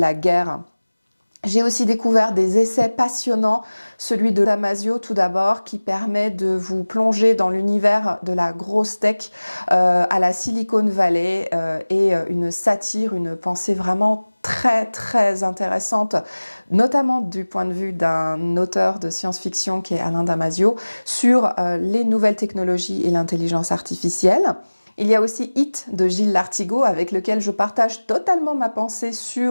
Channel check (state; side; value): inverted; both; correlation -1.00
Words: guerre. J'ai aussi découvert des essais passionnants, celui de Damasio tout d'abord, qui permet de vous plonger dans l'univers de la grosse tech à la Silicon Valley, et une satire, une pensée vraiment très très intéressante, notamment du point de vue d'un auteur de science-fiction qui est Alain Damasio, sur les nouvelles technologies et l'intelligence artificielle. Il y a aussi It de Gilles Lartigot, avec lequel je partage totalement ma pensée